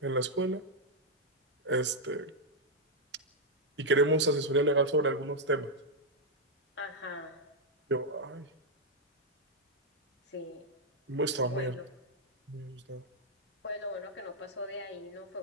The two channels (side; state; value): both; normal; correlation -0.02